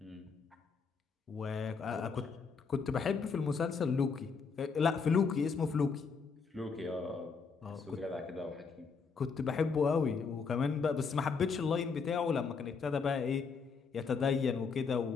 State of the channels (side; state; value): right; quieter; 5.3 dB